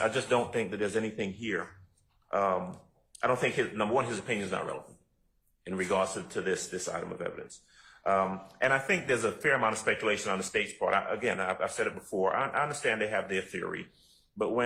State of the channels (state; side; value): identical; both; correlation 1.00